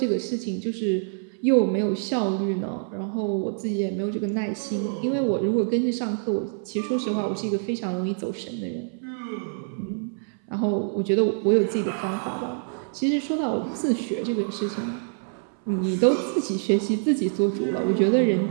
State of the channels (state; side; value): silent; left; 61 dB below the other